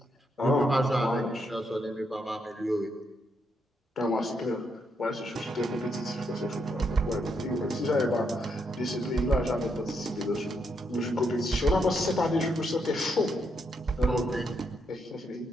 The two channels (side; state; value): both; normal; correlation 0.78